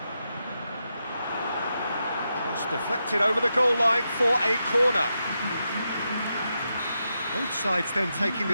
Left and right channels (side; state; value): both; inverted; correlation -0.86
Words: Cross deflected over the goal line for a corner. Both sides then taking